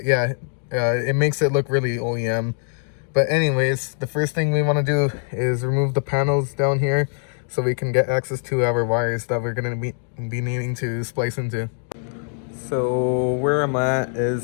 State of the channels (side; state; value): right; silent; digital silence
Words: yeah, it makes it look really OEM. But anyways, the first thing we want to do is remove the panels down here so we can get access to our wires that we're going to be needing to splice into. So where I'm at